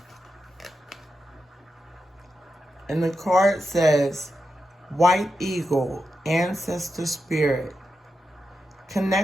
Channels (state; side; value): normal; both; correlation 0.88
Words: And the card says, White Eagle, Ancestor Spirit.